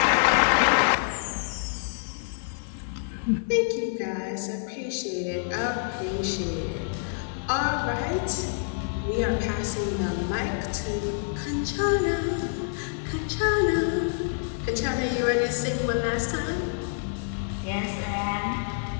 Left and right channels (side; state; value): right; silent; digital silence